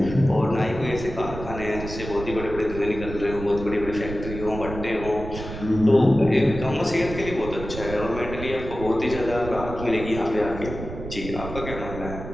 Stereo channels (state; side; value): noise; right; rumble, 9 dB below the sound